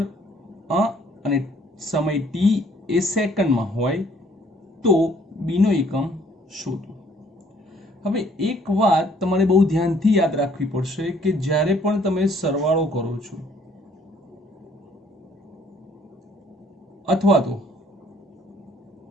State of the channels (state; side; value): normal; both; correlation 0.61